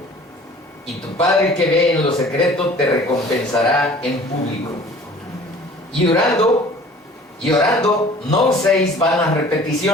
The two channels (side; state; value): both; normal; correlation 0.48